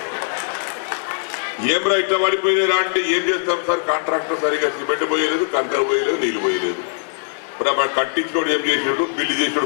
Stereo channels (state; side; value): silent; right; digital silence